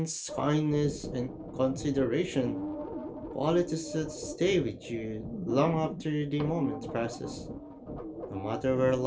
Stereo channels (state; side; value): identical; both; correlation 1.00